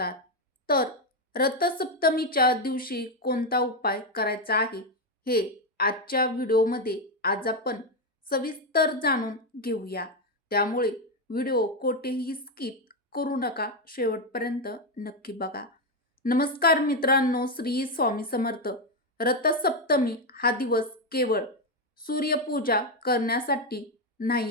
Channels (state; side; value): normal; both; correlation 0.07